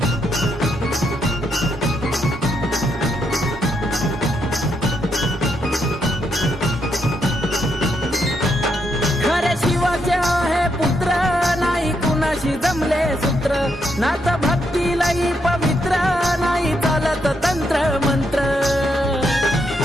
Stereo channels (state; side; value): normal; both; correlation 0.79